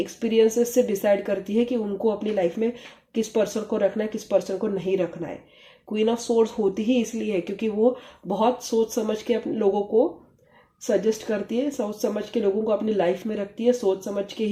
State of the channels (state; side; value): identical; both; correlation 1.00